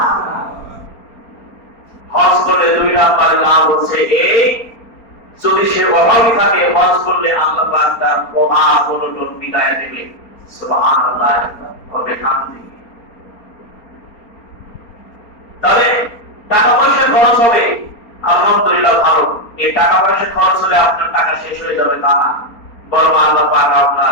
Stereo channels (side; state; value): right; late; 4.3 ms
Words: হজ করলে দুই নাম্বার লাভ হচ্ছে এই, যদি সে অভাবী থাকে হজ করলে আল্লাহ পাক তার অভাব অনটন মিটায় দেবে। সুবহানাল্লাহ। তাহলে টাকা পয়সা খরচ হবে, আলহামদুলিল্লাহ ভালো। এই টাকা পয়সা খরচ হলে আপনার টাকা শেষ হয়ে যাবে তা না, বরং আল্লাহ পাক